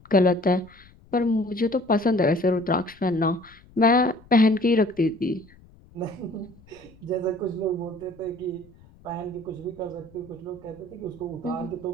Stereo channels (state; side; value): noise; left; rumble, 26 dB below the sound